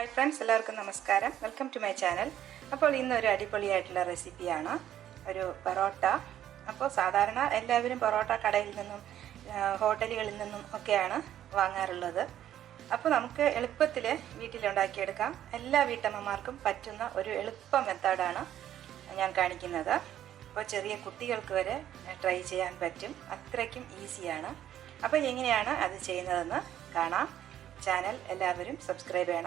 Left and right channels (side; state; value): left; quieter; 11.4 dB